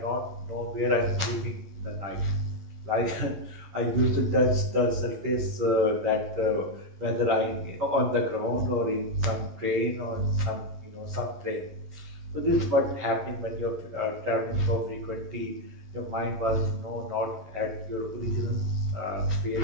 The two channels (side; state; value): left; late; 11 ms